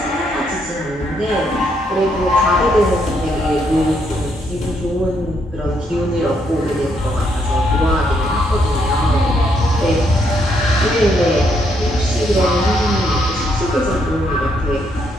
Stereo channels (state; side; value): normal; both; correlation 0.74